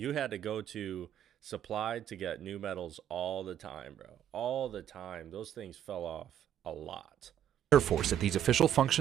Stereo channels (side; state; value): left; quieter; 10.3 dB